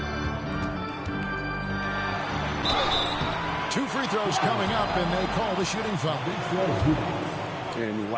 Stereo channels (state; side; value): identical; both; correlation 1.00